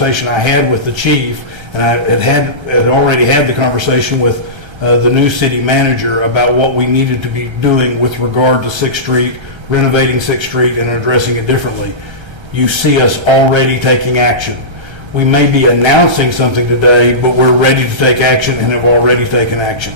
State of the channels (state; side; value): late; left; 1.3 ms